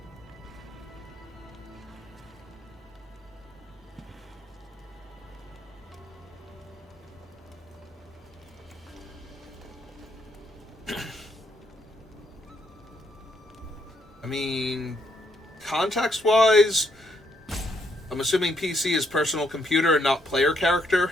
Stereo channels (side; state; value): both; normal; correlation 0.73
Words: I mean, context-wise, I'm assuming PC is personal computer and not player character.